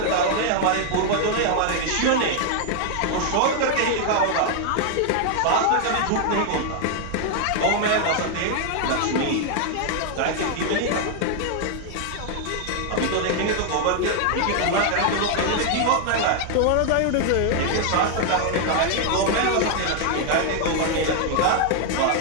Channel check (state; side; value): different; both; correlation 0.00